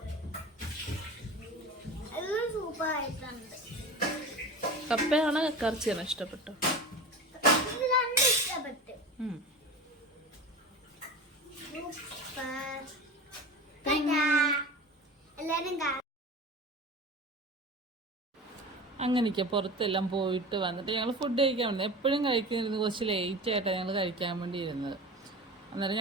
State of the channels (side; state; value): both; normal; correlation 0.32